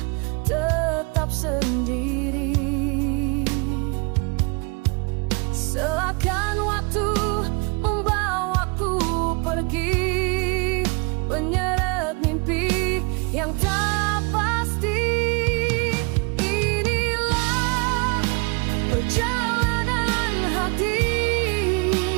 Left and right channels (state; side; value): quieter; left; 30.8 dB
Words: tetap sendiri. Seakan waktu membawaku pergi, menyeret mimpi yang tak pasti. Inilah perjalanan hati,